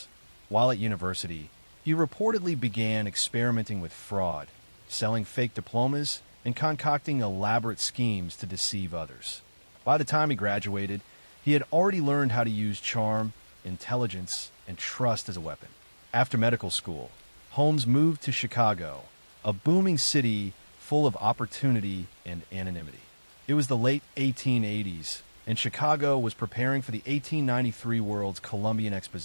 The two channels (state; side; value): inverted; both; correlation -1.00